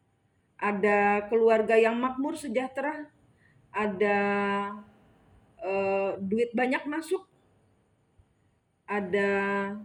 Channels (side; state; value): both; identical; correlation 1.00